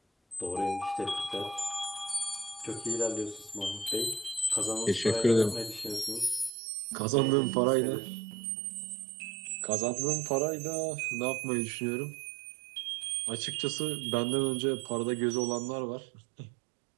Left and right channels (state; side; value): drops out; left; at 6.5 s